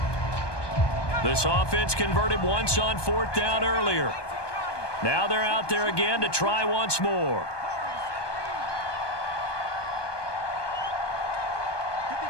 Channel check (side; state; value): right; late; 1.2 ms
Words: This offense converted once on 4th down earlier. Now they're out there again to try once more.